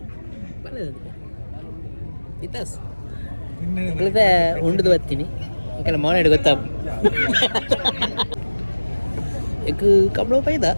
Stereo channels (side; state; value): both; inverted; correlation -1.00